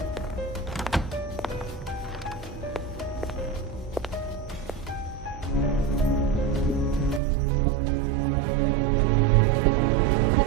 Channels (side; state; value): left; drops out; at 7.2 s